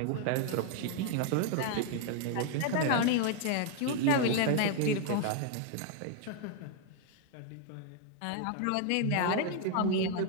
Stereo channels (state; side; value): different; both; correlation 0.00